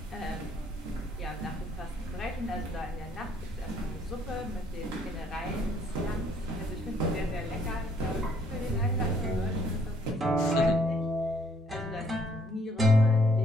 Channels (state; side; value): normal; both; correlation 0.65